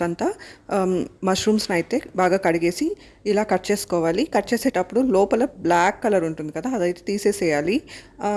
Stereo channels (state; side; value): identical; both; correlation 1.00